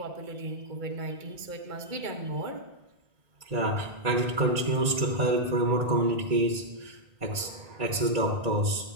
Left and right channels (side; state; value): left; late; 1.9 ms